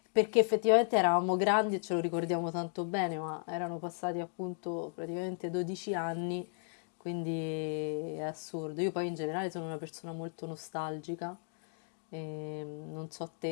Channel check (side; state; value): right; silent; digital silence